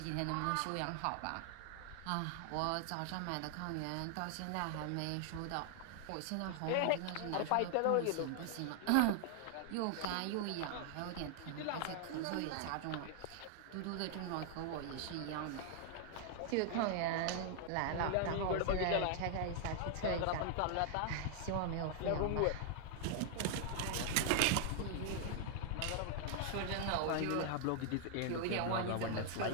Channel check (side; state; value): both; different; correlation 0.00